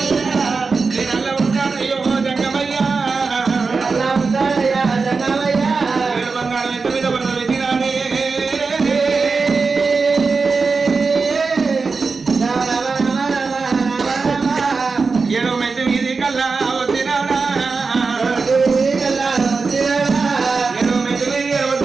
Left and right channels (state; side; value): quieter; left; 4.5 dB